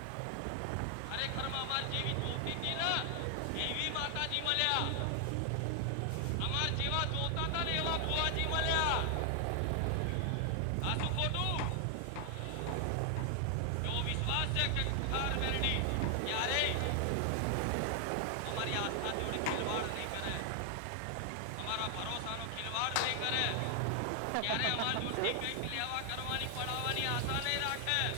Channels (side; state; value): both; different; correlation 0.00